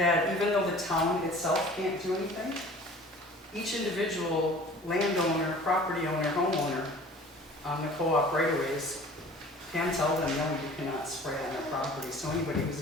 even though the town itself can't do anything, each individual landowner, property owner, homeowner on the co-op right-of-ways can tell them, no, you cannot spray on their property. So anybody who's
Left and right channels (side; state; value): both; normal; correlation 0.46